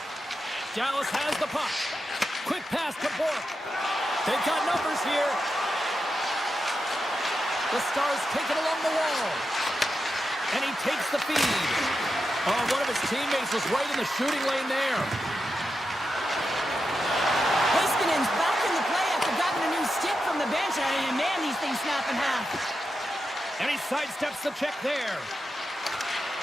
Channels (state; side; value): normal; both; correlation 0.88